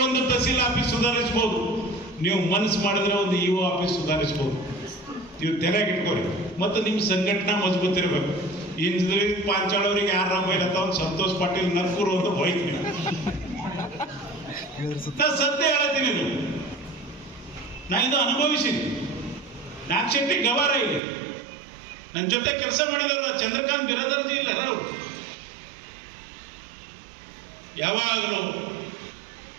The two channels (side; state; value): left; drops out; at 21.0 s